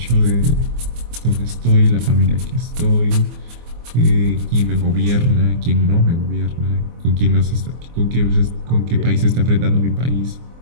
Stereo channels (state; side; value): late; left; 24 ms